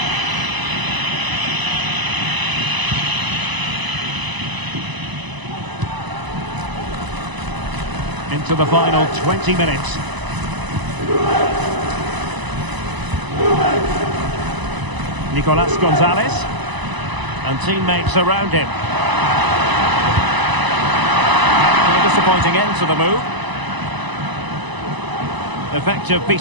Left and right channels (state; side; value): late; left; 1.0 ms